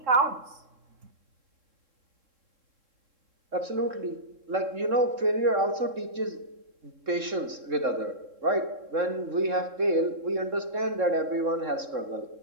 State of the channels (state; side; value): late; left; 3.7 ms